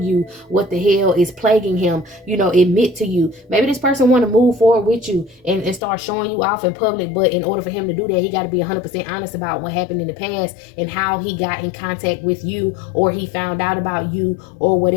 you what the hell is plaguing him, you know, admit to you. Maybe this person want to move forward with you and start showing you off in public, but in order for him to do that, he got to be 100% honest about what happened in the past and how he got in contact with you, or he found out about you, or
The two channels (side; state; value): right; drops out; at 5.8 s